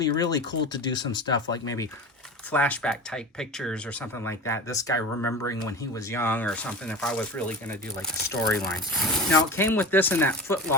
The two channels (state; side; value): normal; both; correlation 0.30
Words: really cool to do some stuff like maybe flashback type pictures or something like that. This guy remembering when he was young or something, if I was really going to do like a storyline. Now it came with this in that foot